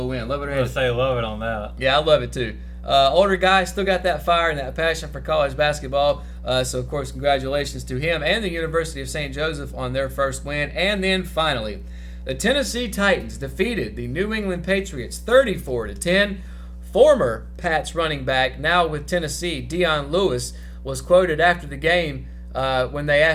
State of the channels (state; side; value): identical; both; correlation 1.00